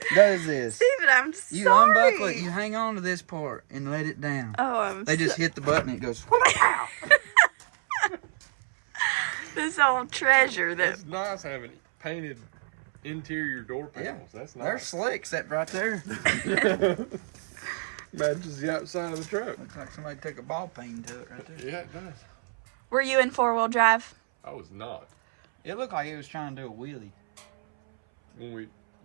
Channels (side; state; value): left; silent; 60 dB below the other